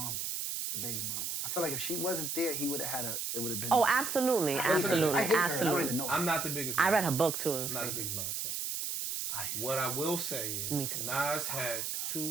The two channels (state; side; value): noise; right; hiss, 2 dB below the sound